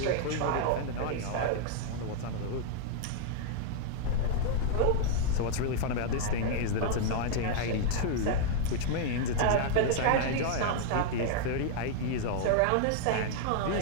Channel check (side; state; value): both; different; correlation -0.01